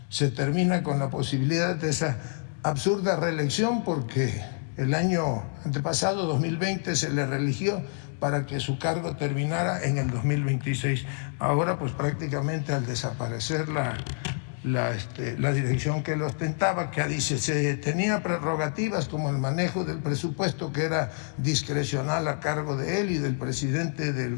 Se termina con la posibilidad de esa absurda reelección, porque el año antepasado, 2020, se le reeligió para que su cargo terminara en el 2026. Ahora, pues prácticamente al desaparecer la dirección que lo ostentaba, que dice se tenía prerrogativas como el manejo del presupuesto, que era discrecional a cargo de él y del presidente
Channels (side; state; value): right; silent; 60 dB below the other